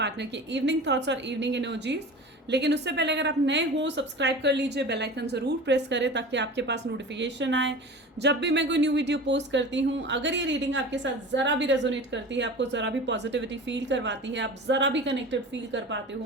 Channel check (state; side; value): normal; both; correlation 0.35